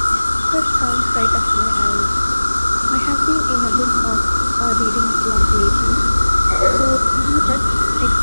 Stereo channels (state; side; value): inverted; both; correlation -1.00